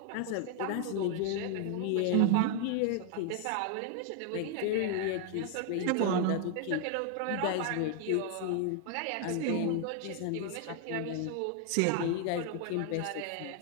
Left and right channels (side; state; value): both; different; correlation 0.00